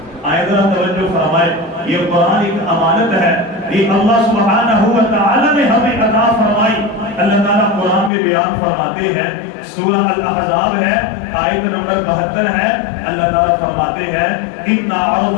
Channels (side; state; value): right; drops out; at 8.1 s